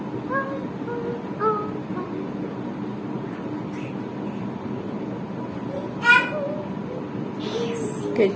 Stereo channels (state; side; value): identical; both; correlation 1.00